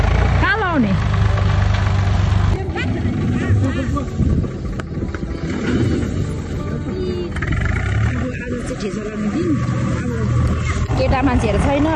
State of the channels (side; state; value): both; identical; correlation 1.00